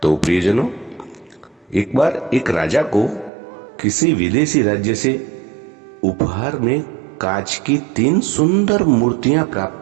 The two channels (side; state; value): left; drops out; at 3.3 s